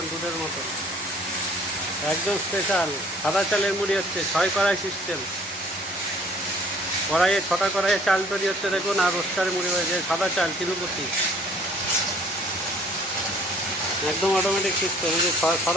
দুধের মতো, একদম স্পেশাল সাদা চালের মুড়ি হচ্ছে। 6 কড়াই সিস্টেম, কড়াইয়ে 6টা কড়াইয়ে চাল তৈরি হচ্ছে দেখুন, আর রোস্টারে মুড়ি হয়েছে। সাদা চাল তিরুপতি, একদম অটোমেটিক সিস্টেম। এই যে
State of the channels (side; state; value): both; normal; correlation 0.56